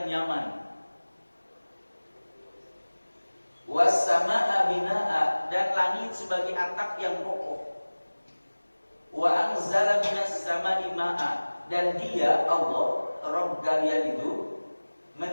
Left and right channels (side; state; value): both; inverted; correlation -1.00